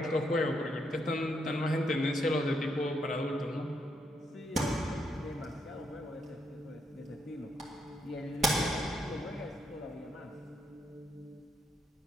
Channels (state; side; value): normal; both; correlation 0.77